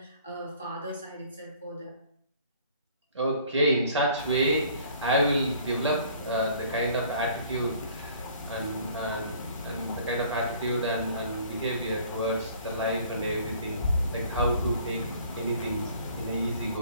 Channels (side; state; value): both; inverted; correlation -0.53